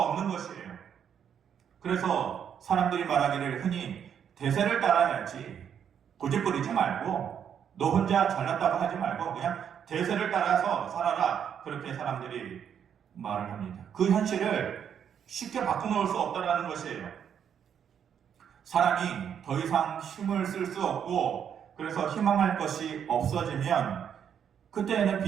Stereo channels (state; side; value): quieter; left; 8.3 dB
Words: 것이에요. 그래서 사람들이 말하기를 흔히 대세를 따라야지 고집부리지 말고 너 혼자 잘났다고 하지 말고 그냥 대세를 따라서 살아라. 그렇게 사람들이 말을 합니다. 그 현실을 쉽게 바꿔놓을 수 없다는 것이에요. 사람이 더 이상 힘을 쓸 수 없고 그래서 희망할 것이 없어지면 그때에는